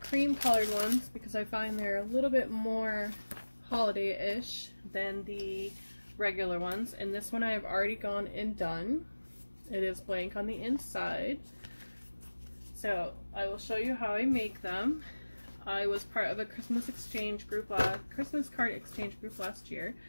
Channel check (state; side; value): inverted; both; correlation -1.00